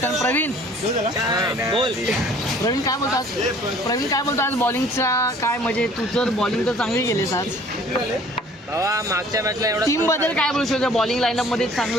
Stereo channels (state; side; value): normal; both; correlation 0.53